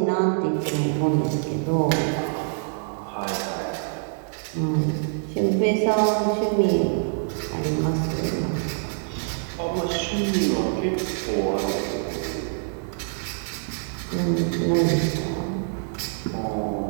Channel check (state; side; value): silent; left; digital silence